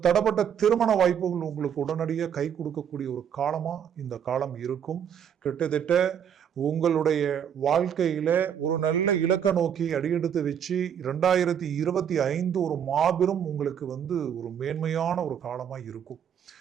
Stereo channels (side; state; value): left; quieter; 8.5 dB